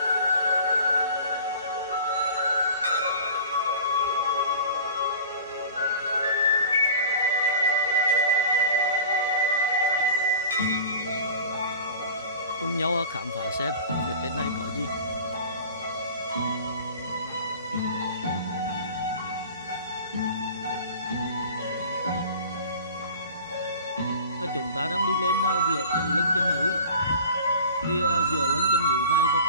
Cùng nhau khám phá xem phía trên này có gì. Chúng ta đang đi lên giữa lưng chân núi. Thì giữa lưng chân núi này và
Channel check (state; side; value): inverted; both; correlation -0.40